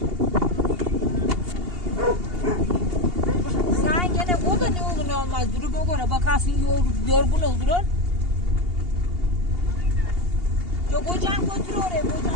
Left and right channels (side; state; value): left; late; 2.8 ms